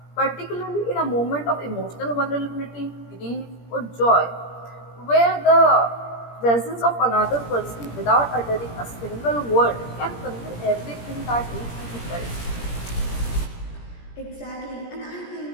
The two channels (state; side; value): late; right; 17 ms